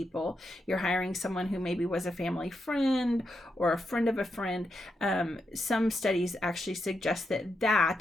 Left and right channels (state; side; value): normal; both; correlation 0.84